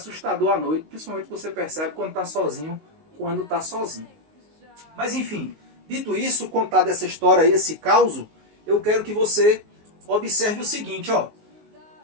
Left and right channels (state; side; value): late; left; 19 ms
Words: à noite, principalmente você percebe quando está sozinho, Mas enfim, dito isso, contado essa história aí, esse caos, eu quero que você observe o seguinte, ó.